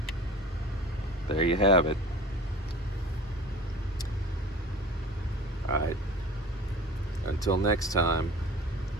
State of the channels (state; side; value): normal; both; correlation 0.40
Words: there you have it. Alright, until next time,